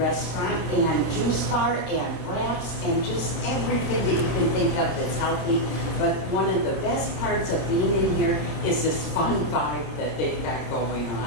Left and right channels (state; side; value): late; right; 26 ms